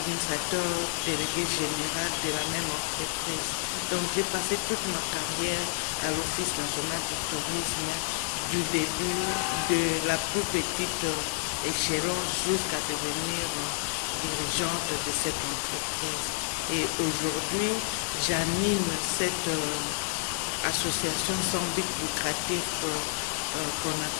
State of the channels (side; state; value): right; silent; 57 dB below the other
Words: délégué général de la même entreprise. Donc j'ai passé toute ma carrière à l'Office national du tourisme, du début de la plus petite échelon jusqu'à devenir dirigeante de cette entreprise. Et aujourd'hui, j'anime cette association sans but lucratif qu'on